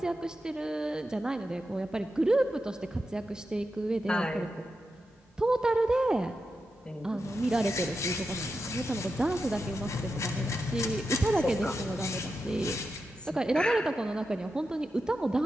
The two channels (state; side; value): normal; both; correlation 0.89